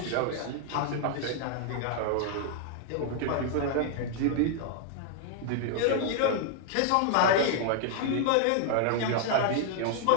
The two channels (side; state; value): both; different; correlation 0.00